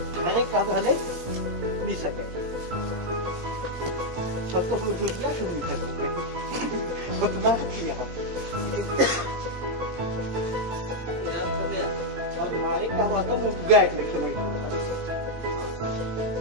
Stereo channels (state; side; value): late; left; 17 ms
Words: घरे का भले नहीं सके सब तो फिर क्या शुरू नहीं कर उतना किया और मारे का हुआ तो मुझ गए लिखे मैं